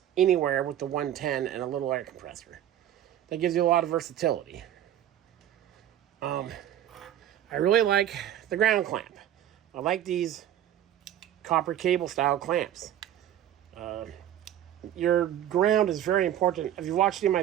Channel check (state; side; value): quieter; left; 11.4 dB